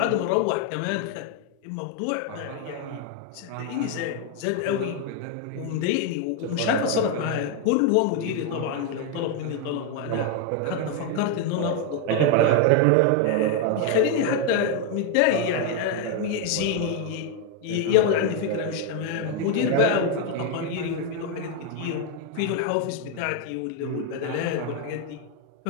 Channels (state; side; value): different; both; correlation 0.01